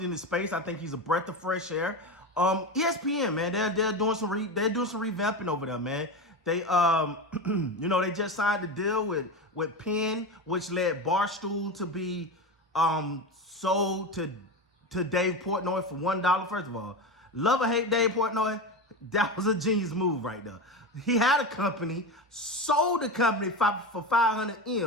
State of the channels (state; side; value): normal; both; correlation 0.21